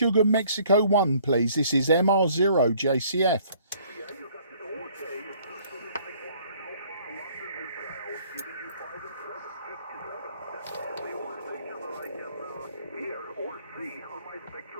Mexico 1, please. This is MR0 JCF.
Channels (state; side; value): inverted; both; correlation -0.59